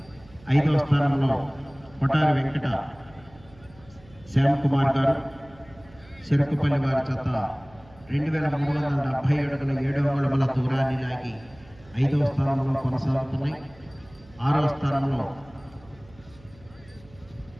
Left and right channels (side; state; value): right; noise; hum, 25 dB below the sound